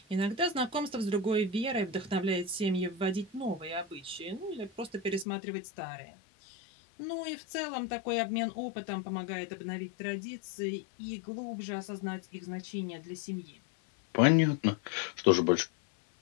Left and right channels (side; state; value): right; drops out; at 5.2 s